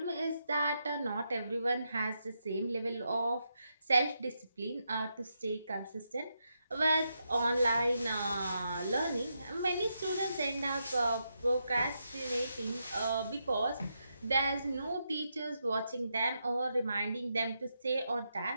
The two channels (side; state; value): both; inverted; correlation -0.83